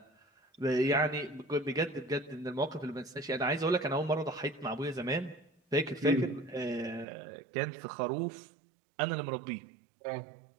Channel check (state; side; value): drops out; left; at 7.1 s